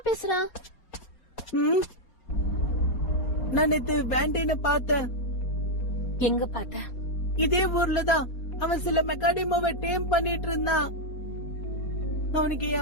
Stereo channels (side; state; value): right; late; 4.2 ms